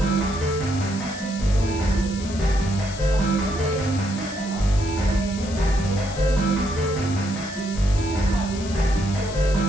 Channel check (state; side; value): noise; left; hiss, 14 dB below the sound